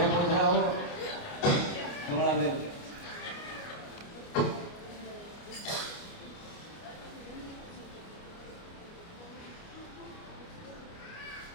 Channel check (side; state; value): right; late; 29 ms